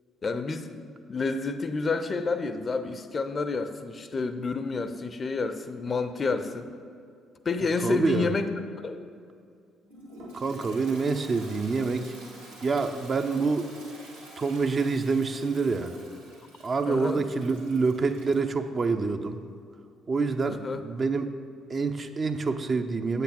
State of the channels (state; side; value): normal; both; correlation 0.82